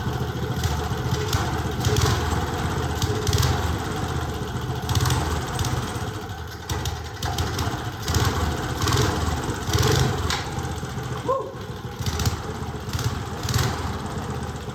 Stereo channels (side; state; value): both; identical; correlation 1.00